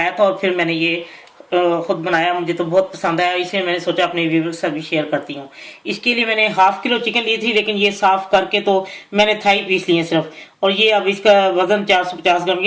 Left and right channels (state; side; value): identical; both; correlation 1.00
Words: था और फिर मैंने ये खुद बनाया। मुझे तो बहुत पसंद आया, इसलिए मैंने सोचा अपने व्यूअर्स के साथ भी शेयर करती हूँ। इसके लिए मैंने हाफ किलो चिकन ली थी, लेकिन ये साफ करके तो मैंने थाई पीस लिए सिर्फ। और ये अब इसका वजन 450 ग्राम,